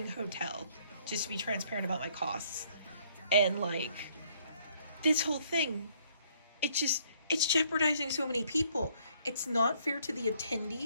hotel, just to be transparent about my costs. And like this whole thing, it's jeopardizing so many people. It's not fair to the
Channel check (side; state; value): both; inverted; correlation -0.65